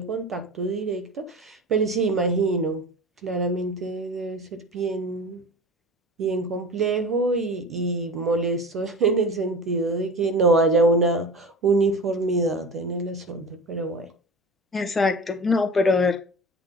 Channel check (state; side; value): normal; both; correlation 0.34